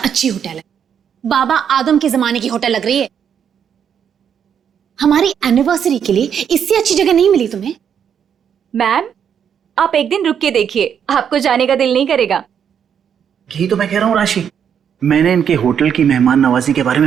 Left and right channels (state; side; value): quieter; left; 8.1 dB